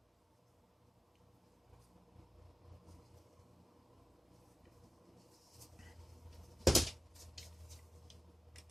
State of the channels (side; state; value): both; normal; correlation 0.95